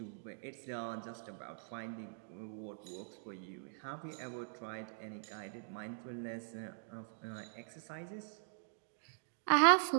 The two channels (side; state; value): left; silent; digital silence